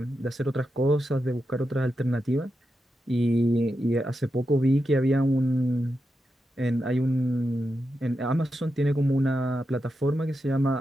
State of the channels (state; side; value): normal; both; correlation 0.88